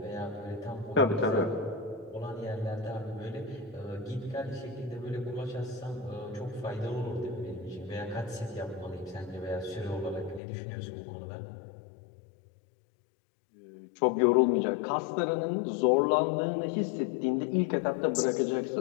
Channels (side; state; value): right; drops out; at 10.4 s